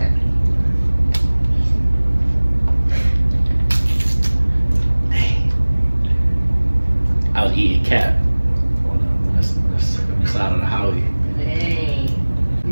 I was eating cat on the side of the highway. Dang.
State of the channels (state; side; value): inverted; both; correlation -1.00